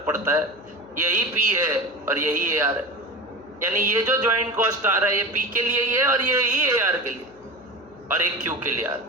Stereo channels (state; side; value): noise; left; hum, 26 dB below the sound